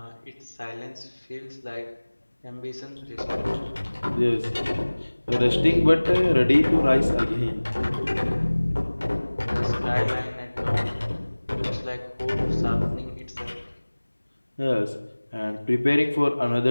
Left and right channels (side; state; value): both; inverted; correlation -1.00